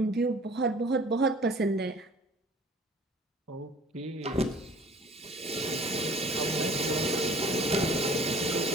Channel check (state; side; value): normal; both; correlation 0.49